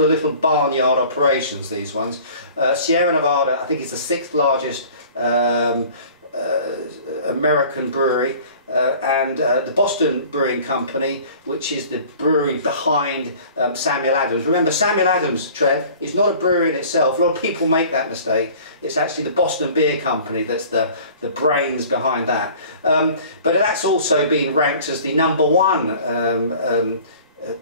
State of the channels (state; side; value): inverted; both; correlation -0.47